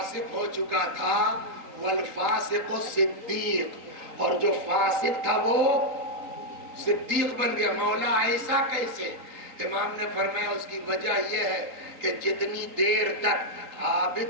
ہو چکا تھا، والفاسق صدیق، اور جو فاسق تھا وہ صدیق بن گیا. مولا ایسا کیسے؟ امام نے فرمایا اس کی وجہ یہ ہے کہ جتنی دیر تک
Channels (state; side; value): late; left; 3.9 ms